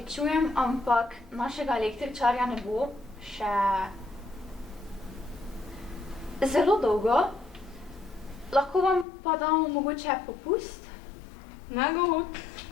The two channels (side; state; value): right; drops out; at 9.1 s